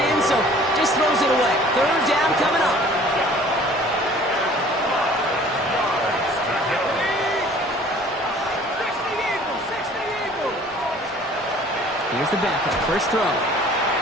in, so just throws it away. 3rd down coming up. Here's the backup, first throw.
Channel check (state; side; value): normal; both; correlation 0.51